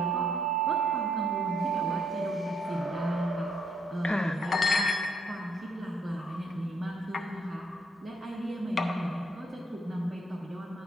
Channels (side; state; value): both; normal; correlation 0.70